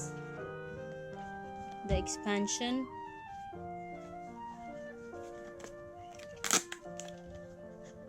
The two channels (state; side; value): identical; both; correlation 1.00